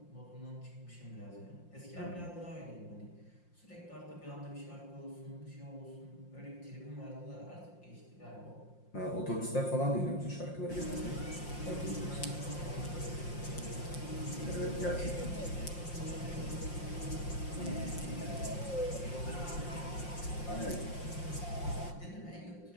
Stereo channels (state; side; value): late; right; 5.7 ms